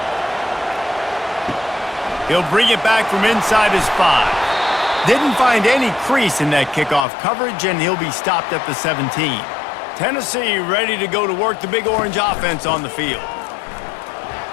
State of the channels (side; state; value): right; drops out; at 7.1 s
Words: He'll bring it back from inside his 5. Didn't find any crease in that kickoff coverage, and he'll be stopped at the 17. Tennessee ready to go to work the Big Orange offense on the field.